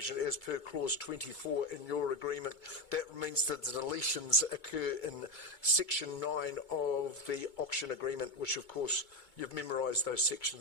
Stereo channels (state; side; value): late; right; 2.2 ms